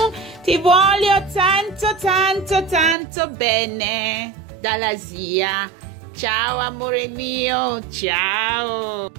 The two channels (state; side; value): drops out; left; at 3.0 s